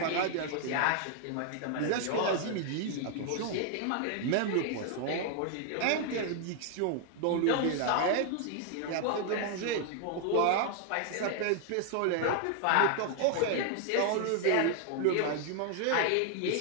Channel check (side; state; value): both; different; correlation 0.00